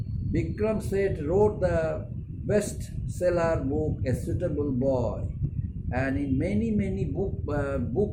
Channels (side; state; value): both; identical; correlation 1.00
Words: Bikram Seth wrote the bestseller book, A Suitable Boy. And in many